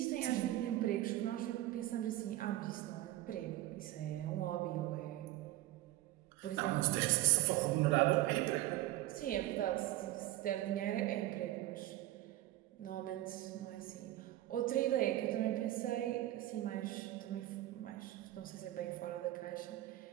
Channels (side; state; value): left; quieter; 15.6 dB